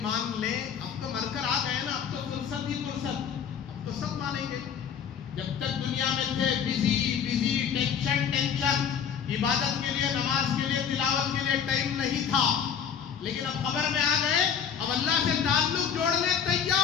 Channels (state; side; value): quieter; right; 7.7 dB